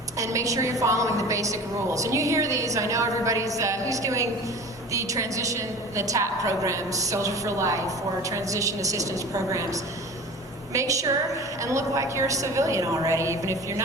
And make sure you're following the basic rules. And you hear these, I know everybody's, who's doing the transition, the TAP programs, Soldier for Life, or transition assistance programs. Make sure and look like you're a civilian already, even if you're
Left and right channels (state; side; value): normal; both; correlation 0.38